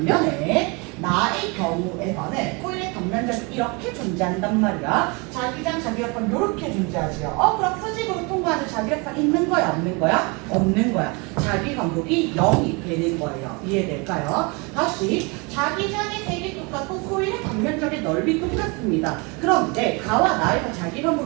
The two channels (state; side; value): quieter; left; 29.6 dB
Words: 나의 경우에서는 코일의 단면적이 이렇게 존재한단 말이야. 자기장, 자기력선 이렇게 존재하지요. 그럼 수직으로 통과하는 자기력선 있는 거야, 없는 거야? 없는 거야. 자기 간격이 0이 되는 거예요. 이해될까요? 다시 자기장의 색이 똑같고 코일의 단면적의 넓이 똑같습니다. 그런데 가와 나에서 자기